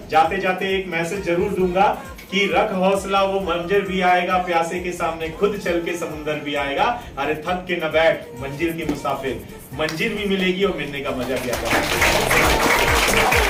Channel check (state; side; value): identical; both; correlation 1.00